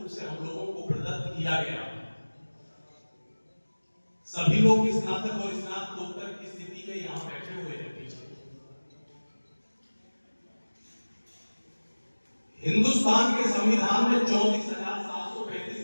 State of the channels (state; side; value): inverted; both; correlation -1.00